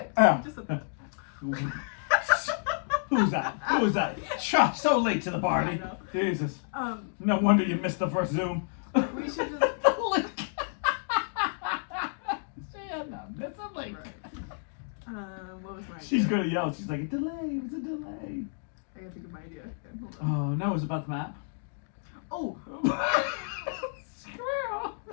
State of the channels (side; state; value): right; silent; digital silence